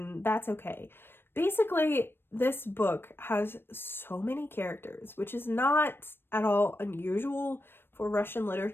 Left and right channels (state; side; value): late; right; 0.10 ms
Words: that's okay. Basically, this book has so many characters, which is not at all unusual for Russian